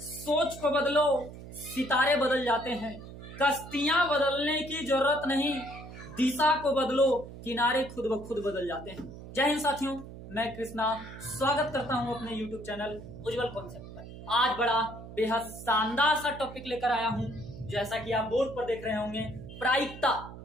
को बदलो, सितारे बदल जाते हैं। कश्तियां बदलने की जरूरत नहीं, दिशा को बदलो, किनारे खुद ब खुद बदल जाते हैं। जय हिंद साथियों, मैं कृष्णा स्वागत करता हूं अपने YouTube चैनल उज्जवल कॉन्सेप्ट पर। आज बड़ा बेहद शानदार सा टॉपिक लेकर आया हूं। जैसा कि आप बोर्ड पर देख रहे होंगे, प्रायिकता,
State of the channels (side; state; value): right; noise; hum, 14 dB below the sound